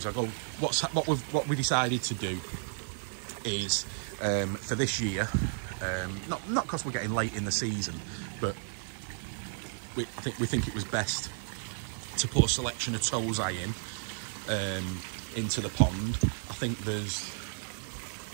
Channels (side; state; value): left; silent; digital silence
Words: what we decided to do is for this year, not because we're getting late in the season, but we think it was best to put a selection of towseye into the pond. I think there's